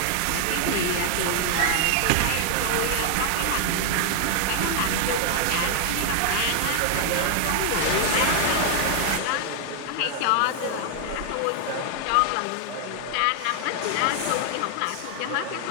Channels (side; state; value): both; different; correlation 0.00